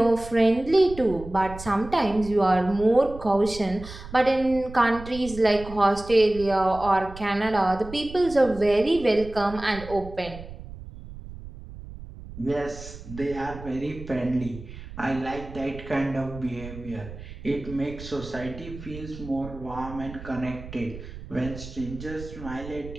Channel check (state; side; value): noise; right; rumble, 14 dB below the sound